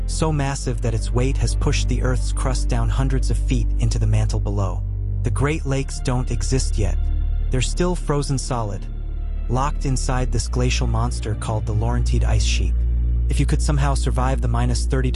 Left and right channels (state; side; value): identical; both; correlation 1.00